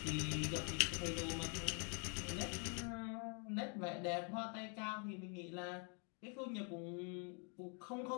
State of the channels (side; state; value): right; quieter; 39.0 dB